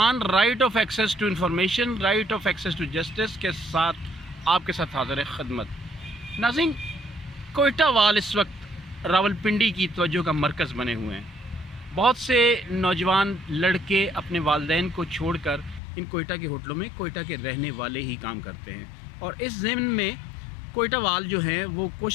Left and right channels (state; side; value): drops out; right; at 15.8 s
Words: right of access to information, right of access to justice کے ساتھ آپ کے ساتھ حاضر خدمت۔ ناظرین، کوئٹہ وال اس وقت راولپنڈی کی توجہ کا مرکز بنے ہوئے ہیں۔ بہت سے نوجوان لڑکے اپنے والدین کو چھوڑ کر ان کوئٹہ کے ہوٹلوں میں کوئٹہ کے رہنے والے ہی کام کرتے ہیں، اور اس ضمن میں کوئٹہ وال جو ہیں وہ